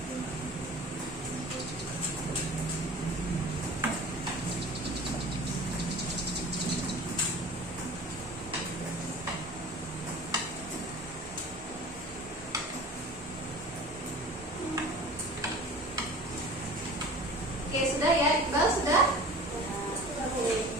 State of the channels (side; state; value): both; normal; correlation 0.41